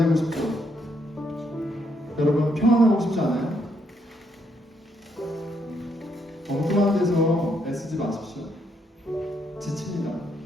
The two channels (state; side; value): normal; both; correlation 0.74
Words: 싶죠? 여러분 평안하고 싶지 않아요? 엉뚱한 데서 애쓰지 마십시오. 지칩니다.